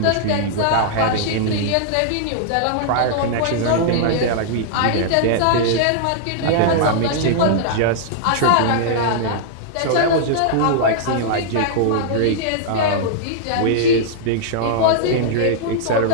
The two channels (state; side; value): different; both; correlation -0.01